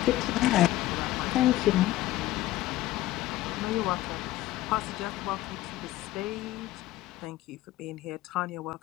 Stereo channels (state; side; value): quieter; right; 15.9 dB